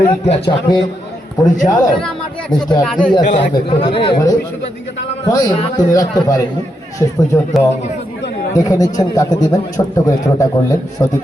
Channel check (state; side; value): normal; both; correlation 0.82